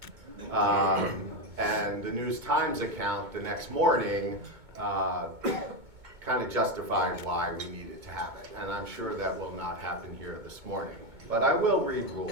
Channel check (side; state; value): left; late; 2.2 ms